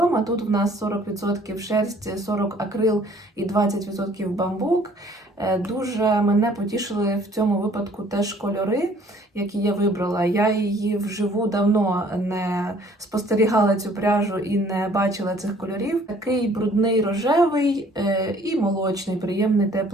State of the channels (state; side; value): normal; both; correlation 0.57